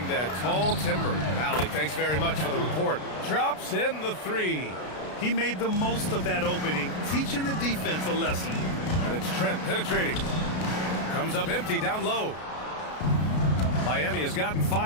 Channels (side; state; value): right; late; 33 ms